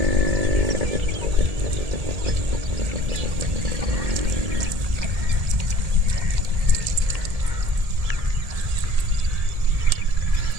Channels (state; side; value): late; left; 1.7 ms